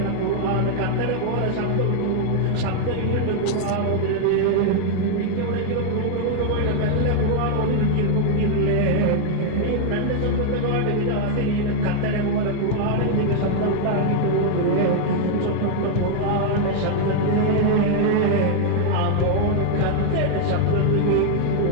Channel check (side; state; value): both; different; correlation 0.00